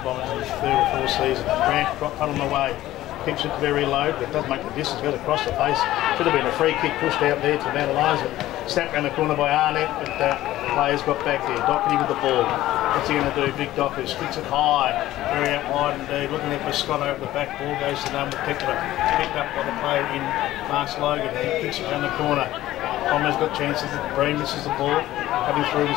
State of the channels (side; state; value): right; quieter; 15.0 dB